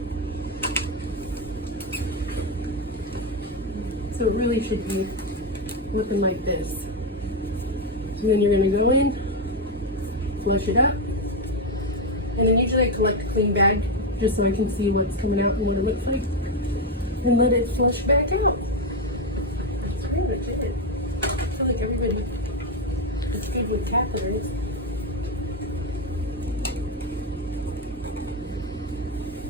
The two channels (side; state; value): both; normal; correlation 0.07